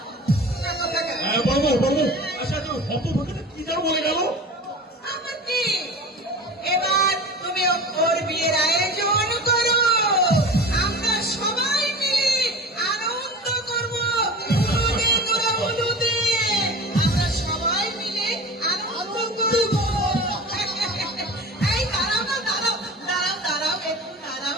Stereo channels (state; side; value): normal; both; correlation 0.35